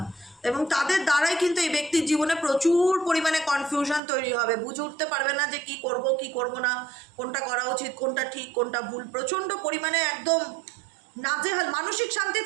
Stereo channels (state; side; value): drops out; left; at 4.0 s